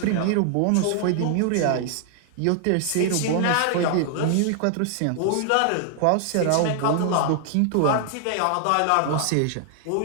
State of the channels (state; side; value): different; both; correlation 0.00